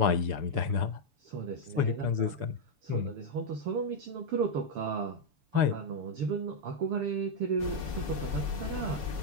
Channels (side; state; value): left; late; 6.9 ms